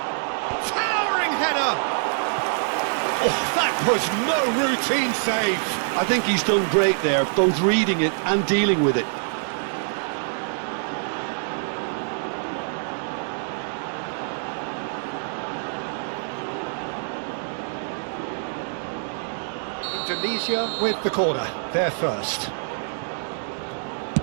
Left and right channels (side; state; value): left; silent; 62 dB below the other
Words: Oh, that was no routine save. I think he's done great there, both reading it and dealing with it. Indonesia with the corner, they're first.